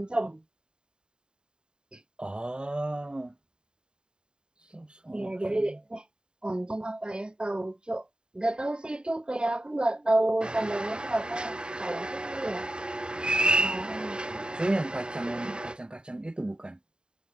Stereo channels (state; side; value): late; left; 0.048 ms